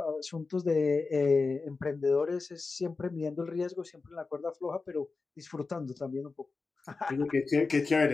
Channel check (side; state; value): right; quieter; 4.1 dB